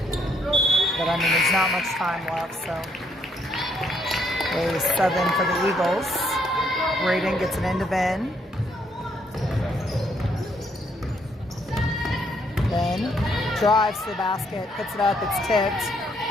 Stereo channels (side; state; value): both; normal; correlation 0.71